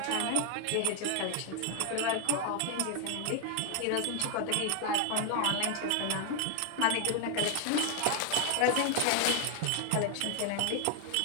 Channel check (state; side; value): different; both; correlation 0.01